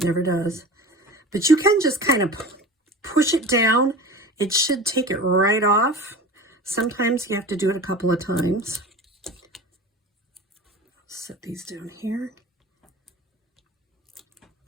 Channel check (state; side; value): normal; both; correlation 0.35